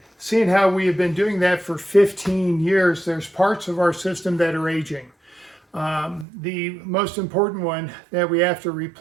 seeing how we have been doing that for 15 years, there's parts of our system that are aging. The most important one that we have to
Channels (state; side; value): drops out; left; at 6.2 s